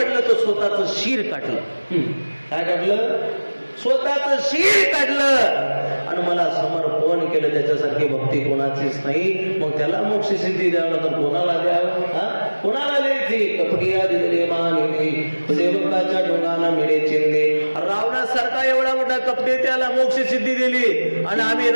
तर स्वतःच शिर काढलं. काय काढलं? स्वतःच शिर काढलं आणि मला समर्पण केलं. त्याच्यासारखी भक्ती कोणाचीच नाही. मग त्याला मोक्ष सिद्धी द्यावं तर कोणाला द्यावं? कोणाला द्यायची? कपटिया दिले मानिली, सेवकाच्या डोंगाना मिळे चिंदे. रावणासारखा एवढा मोठा कपटे त्याला मोक्ष सिद्धी दिली आणि आम्ही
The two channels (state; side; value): inverted; both; correlation -1.00